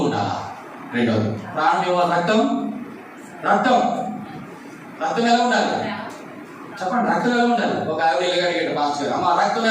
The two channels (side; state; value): both; identical; correlation 1.00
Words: ఉండాలి. రెండవది ప్రాణం ఏమో రక్తం. రక్తం ఎలా ఉండాలి చెప్పండి? రక్తం ఎలా ఉండాలి? ఒక ఆవిడ ఎలాగడిగేట పాస్టర్ అమ్మ రక్తం